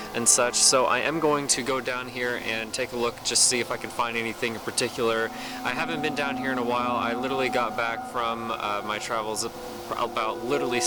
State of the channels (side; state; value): both; identical; correlation 1.00